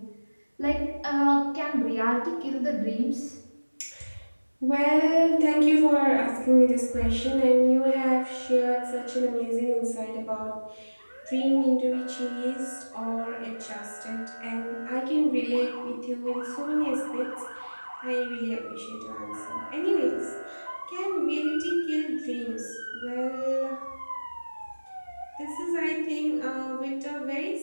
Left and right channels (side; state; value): both; inverted; correlation -1.00